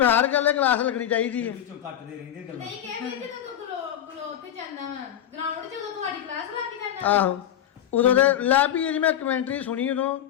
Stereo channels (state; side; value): quieter; right; 10.7 dB